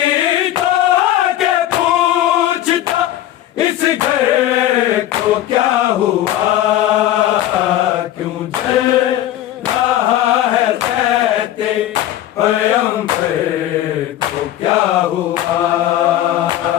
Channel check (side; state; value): right; quieter; 13.1 dB